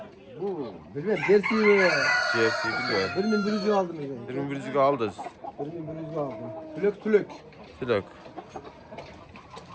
Bu bilmem dersi mi? Jersey bilmiyorum. 1100'ü aldım ben. 2100'ü aldız. 1100'ü aldım. Tülök. Tülök.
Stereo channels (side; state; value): both; identical; correlation 1.00